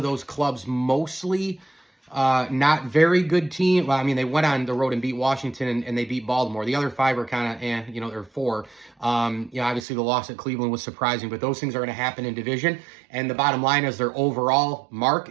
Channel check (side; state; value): left; drops out; at 9.8 s